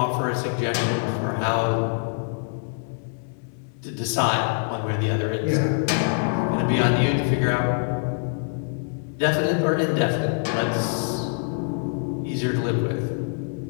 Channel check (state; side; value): silent; right; 60 dB below the other